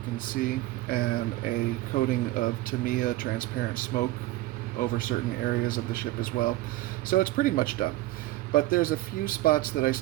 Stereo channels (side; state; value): left; quieter; 17.1 dB